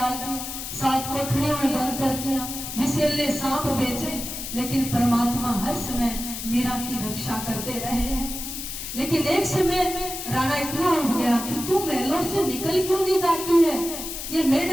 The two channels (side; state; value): left; noise; hiss, 7 dB below the sound